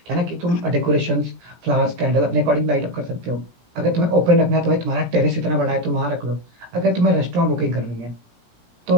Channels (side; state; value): left; late; 17 ms